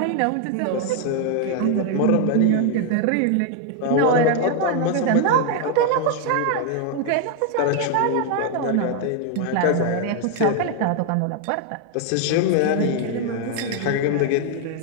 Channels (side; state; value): both; different; correlation 0.00